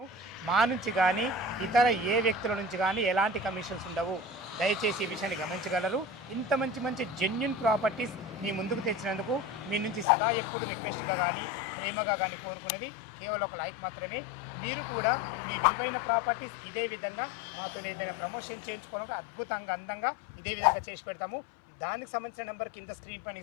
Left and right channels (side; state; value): right; drops out; at 10.1 s